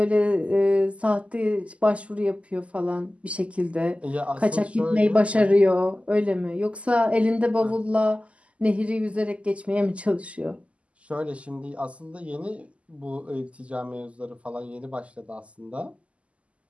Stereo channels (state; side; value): late; left; 0.061 ms